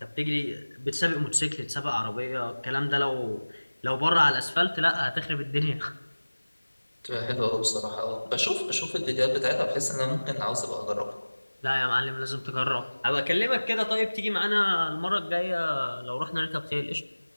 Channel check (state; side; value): inverted; both; correlation -1.00